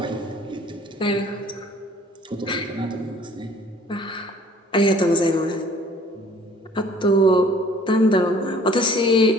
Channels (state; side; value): normal; both; correlation 0.53